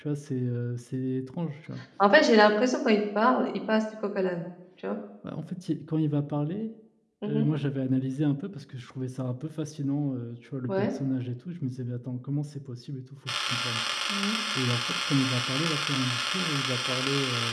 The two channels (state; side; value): identical; both; correlation 1.00